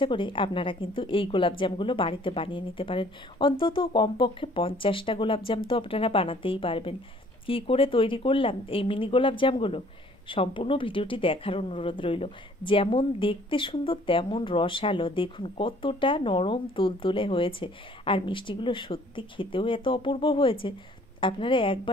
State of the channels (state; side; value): normal; both; correlation 0.57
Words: করে আপনারা কিন্তু এই গোলাপজামগুলো বাড়িতে বানিয়ে নিতে পারেন। অন্তত কমপক্ষে 50টা গোলাপজাম তো আপনারা বানাতেই পারবেন। কি করে তৈরি করলাম এই মিনি গোলাপজামগুলো, সম্পূর্ণ ভিডিওটি দেখার অনুরোধ রইল। যেমন দেখতে সুন্দর তেমন রসালো, দেখুন কতটা নরম তুলতুলে হয়েছে। আর মিষ্টিগুলো সত্যি খেতেও এত অপূর্ব হয়েছে। আপনারা